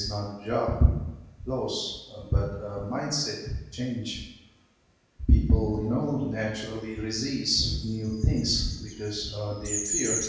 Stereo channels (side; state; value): both; identical; correlation 1.00